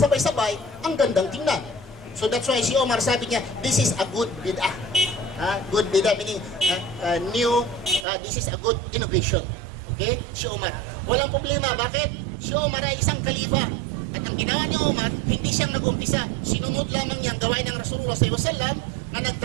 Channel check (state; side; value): drops out; left; at 8.1 s